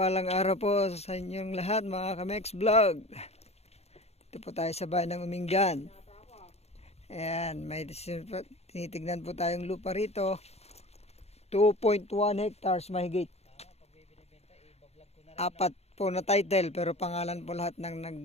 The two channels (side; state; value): right; late; 0.30 ms